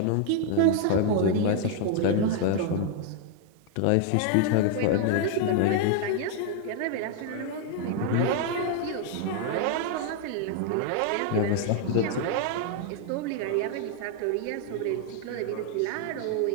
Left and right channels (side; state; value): both; different; correlation 0.00